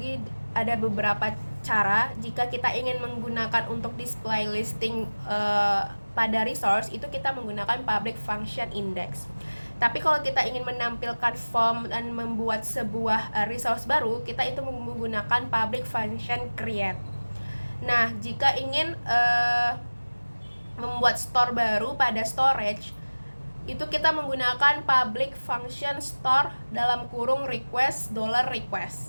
ada beberapa cara. Jika kita ingin menggunakan untuk display listing pada resource, itu kita menggunakan public function index. Tapi kalau kita ingin menampilkan form dan membuat sebuah resource baru, kita itu menggunakan public function create. Nah, jika ingin membuat store baru pada storage, itu kita menggunakan public function store dalam kurung request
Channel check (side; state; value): both; inverted; correlation -1.00